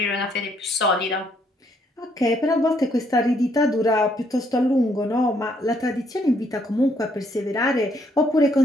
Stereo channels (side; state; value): both; normal; correlation 0.70